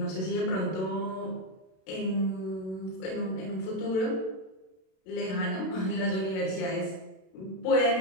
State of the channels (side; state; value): right; late; 32 ms